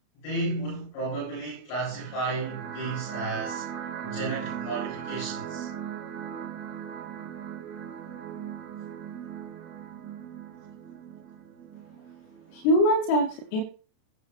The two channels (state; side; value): late; right; 33 ms